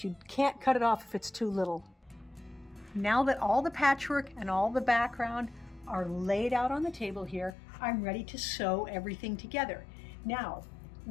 you can't cut it off if it's too little. Now that all the patchwork and all the background are laid out on the table here, I'm ready to sew everything together. Now,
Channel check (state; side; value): drops out; right; at 7.6 s